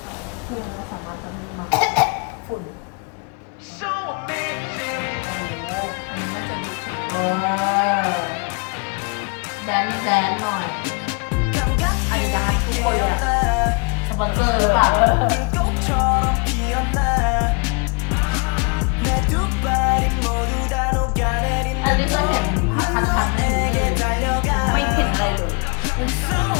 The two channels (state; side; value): quieter; right; 33.2 dB